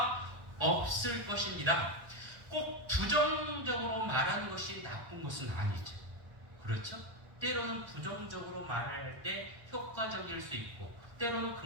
없을 것입니다. 꼭 부정적으로 말하는 것이 나쁜 것은 아니죠. 그렇죠? 때로는 부정적으로 말할 때 효과적일 수 있고, 때로는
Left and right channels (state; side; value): late; left; 1.3 ms